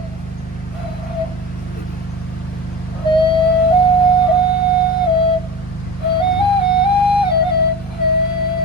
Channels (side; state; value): both; normal; correlation 0.31